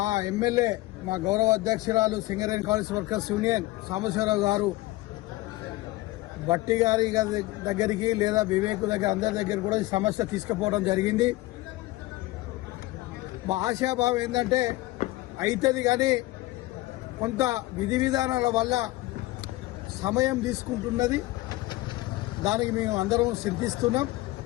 ఎమ్మెల్యే, మా గౌరవ అధ్యక్షురాలు Singareni college workers union Sambasivarao గారు బట్టి గారి దగ్గరికి లేదా వివేక్ దగ్గర అందరి దగ్గర కూడా ఈ సమస్య తీసుకుపోవడం జరిగింది. మా ఆశాభావం ఏంటంటే అవుతుంది, కానీ కొంత విధి విధానాల వల్ల సమయం తీసుకుంటున్నది. దానికి మేము అందరం చింతిస్తున్నాం.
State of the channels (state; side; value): quieter; right; 19.5 dB